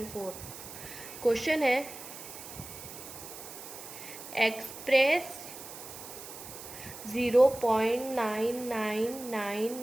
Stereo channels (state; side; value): noise; right; hiss, 12 dB below the sound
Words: 4। Question है express